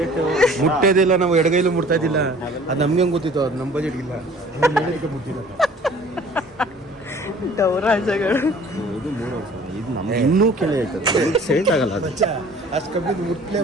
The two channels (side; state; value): both; normal; correlation 0.50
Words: ಮುಟ್ಟೋದಿಲ್ಲ. ನಾವು ಎಡಗೈಲು ಮುಟ್ತಾ ಇದ್ದಿಲ್ಲ. ಅದು ನಮ್ಗೆ ಹೆಂಗೆ ಗೊತ್ತಿತ್ತು? ಅದು ನಮ್ಮ ಬಜೆಟ್ಗಿಲ್ಲ. ಮುಟ್ಟಿಲ್ಲ ಗೌರಾಜಗಳು. ಇದು 3,000. ಇದು ನಮ್ಗೆ ಇನ್ನೂ ಕೆಲ ಹೇಳ್ತದೆ, ಸೆಟ್ ಆಗಲ್ಲ. ಅದು ಅಷ್ಟು ಕಮ್ಮಿ ಮುಟ್ಲೇ